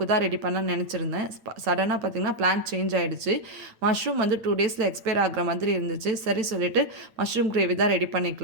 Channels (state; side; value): late; left; 8.9 ms